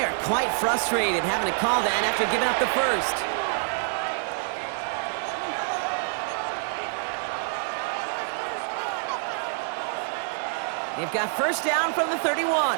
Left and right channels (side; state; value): left; silent; 56 dB below the other